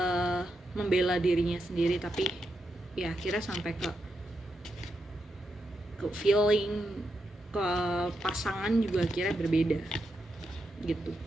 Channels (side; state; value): both; normal; correlation 0.85